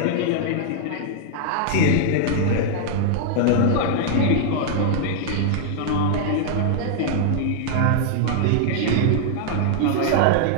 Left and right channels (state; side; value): different; both; correlation -0.01